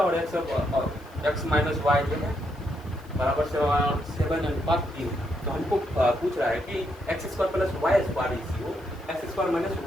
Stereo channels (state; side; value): noise; left; hiss, 28 dB below the sound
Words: एक्स माइनस वाई जो है बराबर से 7/3। तो हमको पूछ रहा है कि X square plus Y square इसी X square minus